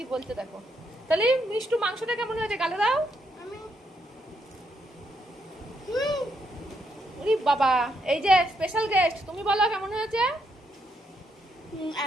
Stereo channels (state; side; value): normal; both; correlation 0.77